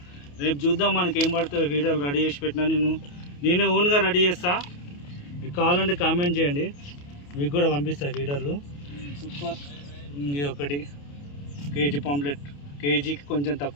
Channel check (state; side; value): late; right; 28 ms